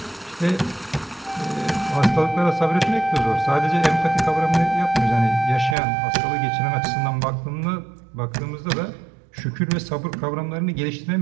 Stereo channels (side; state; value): left; drops out; at 5.8 s